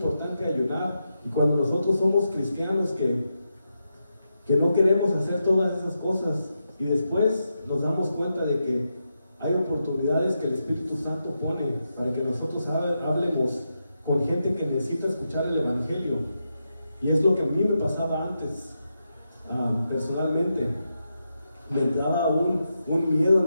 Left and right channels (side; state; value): both; inverted; correlation -0.86